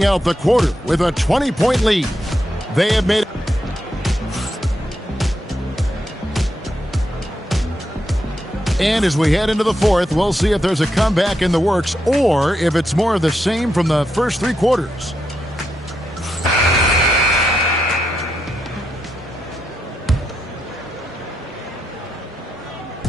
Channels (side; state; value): both; normal; correlation 0.83